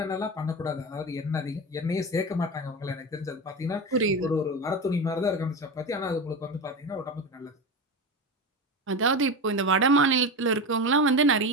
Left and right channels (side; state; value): both; normal; correlation 0.22